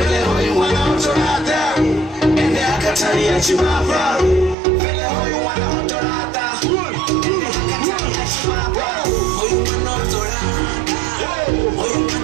hoi wana otorata Ende akatari ya chimapa Vele hoi wana otorata Ende akatari ya chimapa Hoi wana otorata Hoi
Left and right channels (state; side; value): drops out; left; at 4.5 s